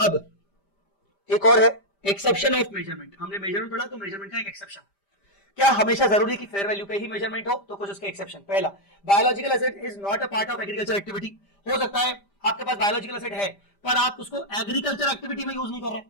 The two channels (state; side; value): late; right; 5.0 ms